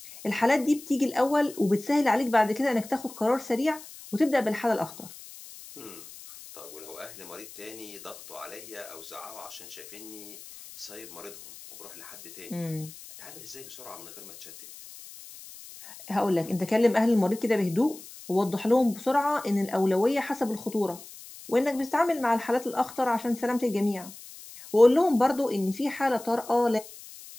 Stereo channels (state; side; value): noise; left; hiss, 17 dB below the sound